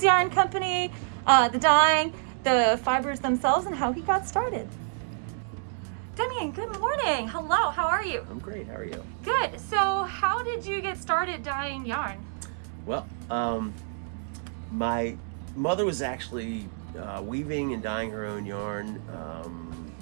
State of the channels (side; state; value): left; silent; digital silence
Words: yarn company, the dyeing, the fibers themselves, and how he got started. Demian, good morning. Hello, how are you? I'm great, how are you? Good. So how did you get started dyeing yarn? Well, my mother was actually weaving and dyeing her own yarn